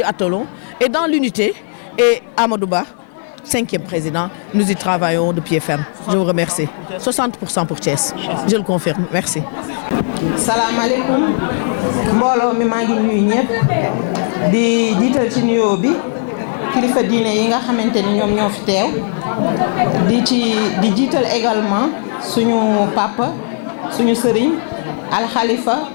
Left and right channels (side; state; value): right; silent; digital silence